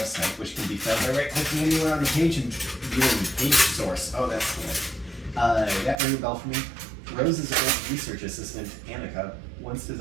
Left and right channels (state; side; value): drops out; left; at 6.0 s